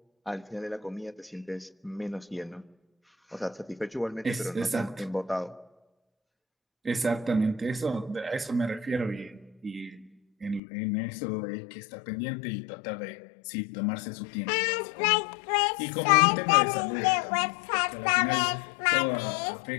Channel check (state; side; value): drops out; right; at 10.6 s